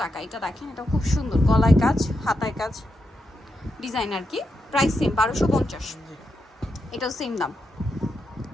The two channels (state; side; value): normal; both; correlation 0.84